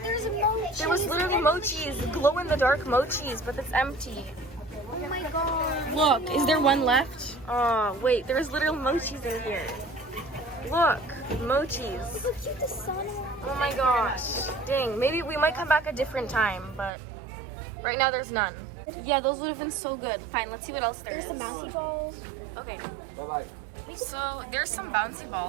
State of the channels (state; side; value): drops out; left; at 16.9 s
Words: There's a mochi. There was literally mochis, glow-in-the-dark mochis, but it's empty. Oh my god. Look, is there one left? Oh, wait, there's literal mochis in here. Look, mochis. Look how cute the sun is. Oh my gosh. Dang, maybe we might come back a different time, but right now there's none. Yeah, those would have been so good. Fine, let's see what else there is. Okay. Bye-bye. So there's some bouncy